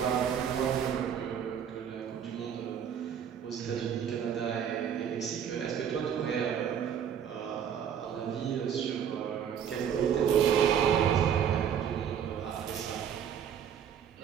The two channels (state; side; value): quieter; left; 8.5 dB